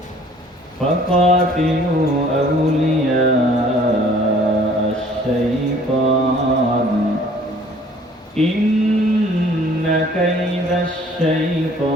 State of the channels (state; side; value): normal; both; correlation 0.55